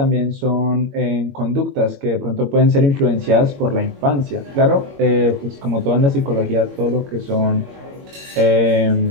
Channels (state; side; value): late; left; 21 ms